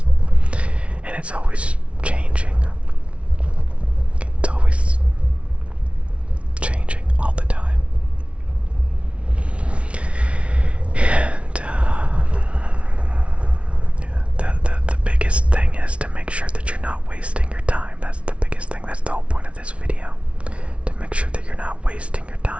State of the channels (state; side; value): late; left; 0.061 ms